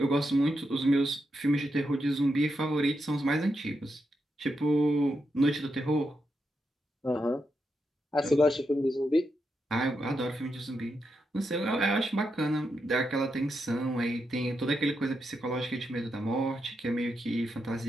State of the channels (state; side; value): normal; both; correlation 0.85